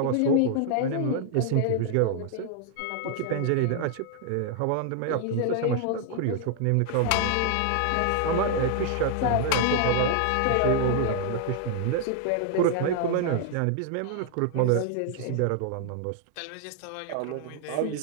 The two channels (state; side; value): different; both; correlation 0.00